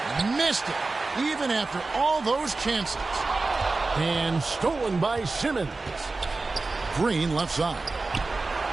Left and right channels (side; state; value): left; quieter; 3.6 dB